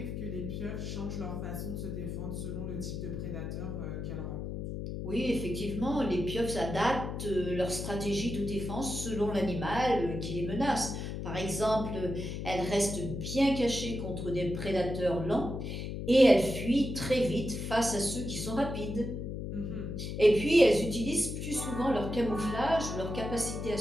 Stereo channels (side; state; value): left; noise; hum, 5 dB below the sound